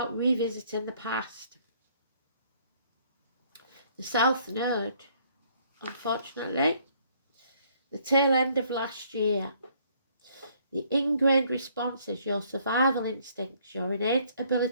revisiting the past. The South Node, unfortunately, the tail end of last year. The ingrained responses, your survival instincts, your innate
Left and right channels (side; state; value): both; inverted; correlation -0.64